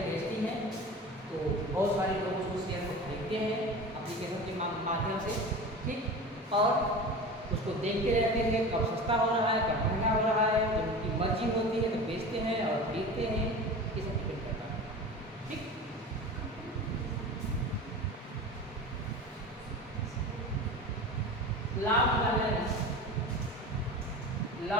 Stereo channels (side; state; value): both; normal; correlation 0.32